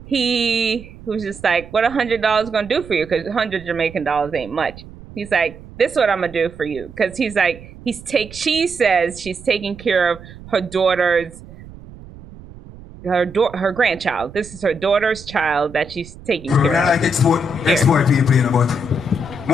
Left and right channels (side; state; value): right; noise; rumble, 18 dB below the sound